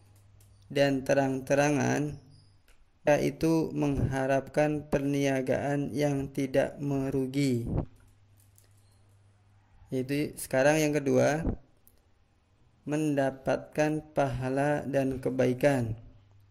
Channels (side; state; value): both; identical; correlation 1.00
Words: dan terang-terangan, yaitu mengharapkan perniagaan yang tidak merugi. Yaitu sekarang yang kedua, mendapatkan pahala dan kebaikan.